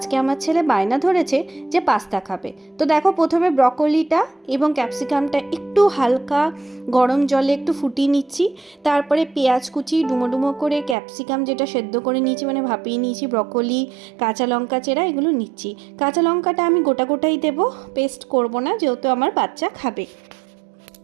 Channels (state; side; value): drops out; left; at 11.0 s